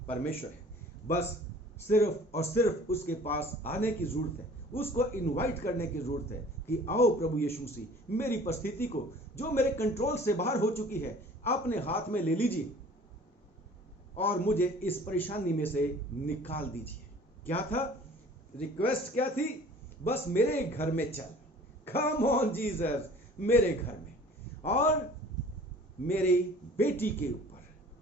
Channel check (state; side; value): normal; both; correlation 0.48